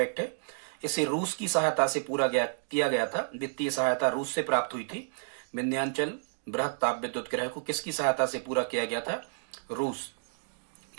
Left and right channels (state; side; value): silent; left; digital silence